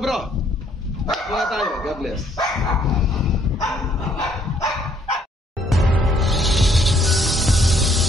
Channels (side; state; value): both; normal; correlation 0.66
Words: muna tayo. God bless.